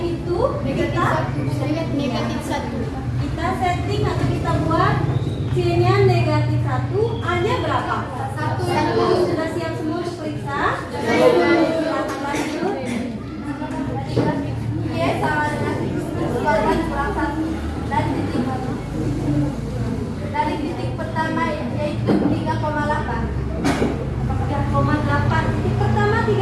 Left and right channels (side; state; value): both; identical; correlation 1.00